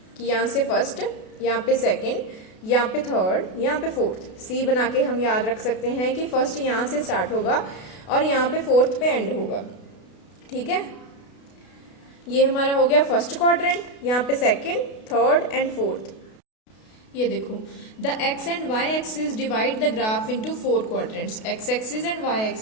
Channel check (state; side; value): late; right; 32 ms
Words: कि यहाँ से फर्स्ट, यहाँ पे सेकंड, यहाँ पे थर्ड, यहाँ पे फोर्थ। सी बना के हम याद रख सकते हैं कि फर्स्ट यहाँ से स्टार्ट होगा और यहाँ पे फोर्थ पे एंड होगा। ठीक है, ये हमारा हो गया फर्स्ट क्वाड्रेंट, यहाँ पे सेकंड, थर्ड एंड फोर्थ। ये देखो, the x and y axis divide the graph into 4 quadrants. x axis and y